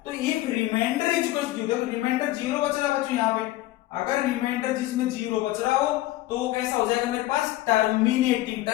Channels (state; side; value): quieter; right; 16.5 dB